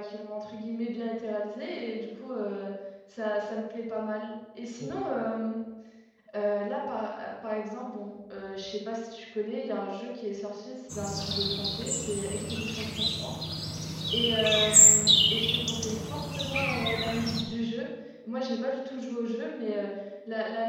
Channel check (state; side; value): identical; both; correlation 1.00